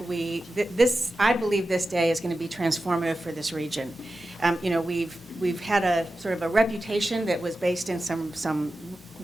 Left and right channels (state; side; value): normal; both; correlation 0.93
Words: believe this day is going to be transformative for this region. You know, we've had a sort of a reputation that was based in some